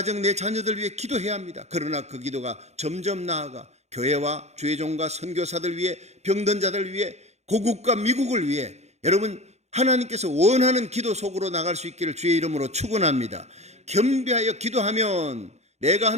내 자녀들 위해 기도해야 합니다. 그러나 그 기도가 점점 나아가 교회와 주의 종과 선교사들 위해, 병든 자들 위해, 고국과 미국을 위해 여러분 하나님께서 원하는 기도 속으로 나갈 수 있기를 주의 이름으로 축원합니다. 겸비하여 기도하면 내가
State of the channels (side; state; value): left; late; 0.32 ms